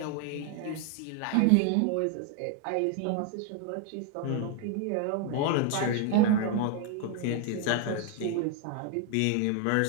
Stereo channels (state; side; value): different; both; correlation 0.01